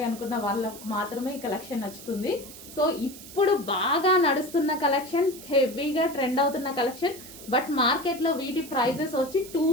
అనుకున్న వాళ్ళకు మాత్రమే ఈ కలెక్షన్ నచ్చుతుంది. సో ఇప్పుడు బాగా నడుస్తున్న కలెక్షన్, హెవీగా ట్రెండ్ అవుతున్న కలెక్షన్, బట్ మార్కెట్లో వీటి ప్రైజెస్ వచ్చి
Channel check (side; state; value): right; noise; hiss, 15 dB below the sound